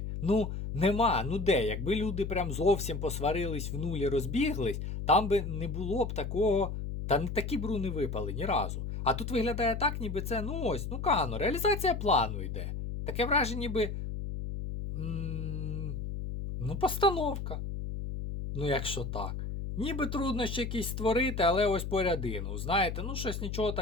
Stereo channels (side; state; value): left; noise; hum, 5 dB below the sound